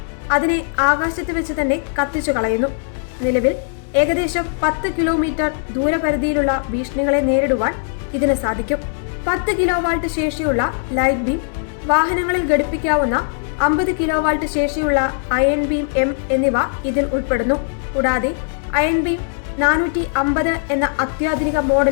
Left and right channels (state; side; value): silent; right; digital silence